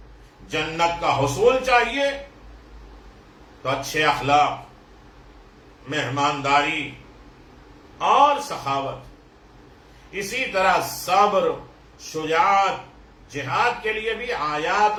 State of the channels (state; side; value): identical; both; correlation 1.00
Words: جنت کا حصول چاہیے تو اچھے اخلاق، مہمانداری اور سخاوت، اسی طرح صبر، شجاعت، جہاد کے لیے بھی آیات